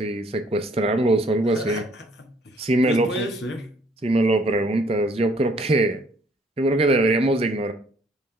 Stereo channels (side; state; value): both; normal; correlation 0.62